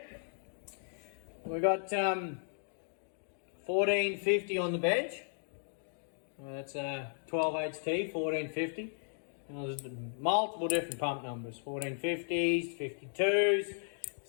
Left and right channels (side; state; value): right; silent; digital silence